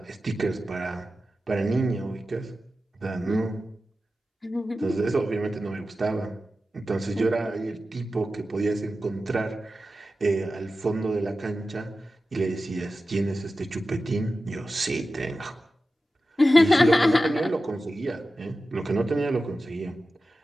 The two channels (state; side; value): normal; both; correlation 0.93